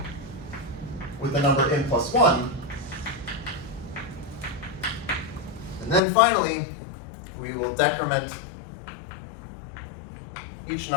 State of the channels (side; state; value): right; drops out; at 6.0 s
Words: with the number n plus 1. And then finally, we will decrement each